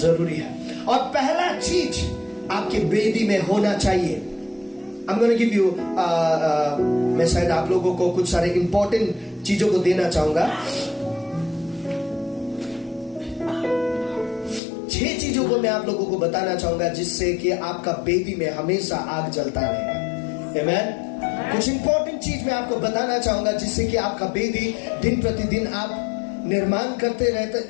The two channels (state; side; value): drops out; right; at 14.6 s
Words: है। और पहला चीज आपके बेदी में होना चाहिए, I'm going to give you मैं शायद आप लोगों को कुछ सारे इंपॉर्टेंट चीजों को देना चाहूंगा। 6 चीजों को मैं आप लोगों को बताना चाहूंगा जिससे कि आपका बेदी में हमेशा आग जलता रहेगा। आमेन। कुछ इंपॉर्टेंट चीज मैं आपको बताना चाहूंगा जिससे कि आपका बेदी दिन प्रतिदिन आप निर्माण करते